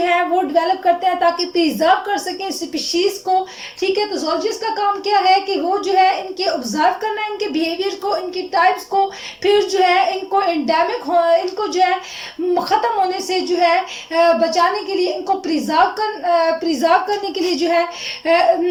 है वो डेवलप करते हैं ताकि प्रिजर्व कर सके स्पीशीज को, ठीक है। तो जोलॉजिस्ट का काम क्या है कि वो जो है इनके ऑब्जर्व करना है, इनके बिहेवियर को, इनकी टाइप्स को, फिर जो है इनको एंडेमिक इनको जो है खत्म होने से जो है बचाने के लिए इनको प्रिजर्व करने के लिए जो है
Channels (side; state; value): both; identical; correlation 1.00